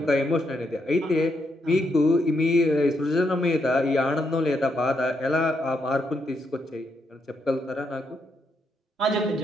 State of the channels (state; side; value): normal; both; correlation 0.79